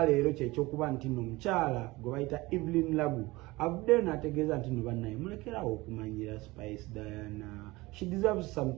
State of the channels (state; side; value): quieter; left; 21.0 dB